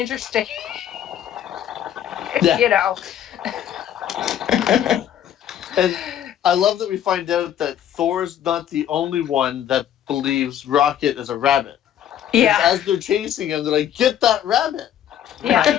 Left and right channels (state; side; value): quieter; right; 10.5 dB